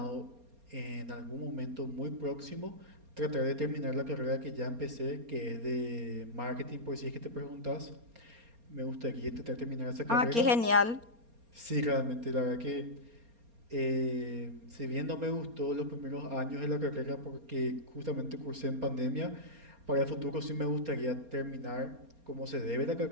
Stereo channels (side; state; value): left; late; 4.3 ms